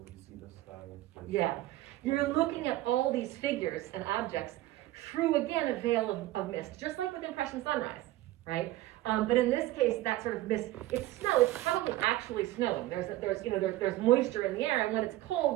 see the sky. Yeah. You're looking at all these figures and objects through, again, a veil of mist, just like with Impression Sunrise, right? But in this case, that sort of mist, it's snow, it's probably actually snowing. There's moisture in the air, and when it's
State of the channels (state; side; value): quieter; left; 16.2 dB